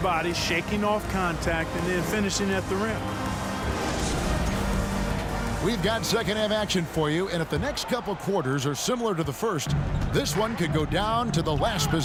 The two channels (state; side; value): identical; both; correlation 1.00